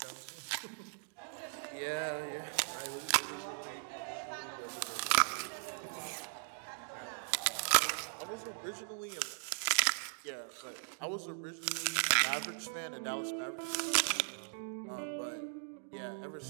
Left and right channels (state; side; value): silent; left; digital silence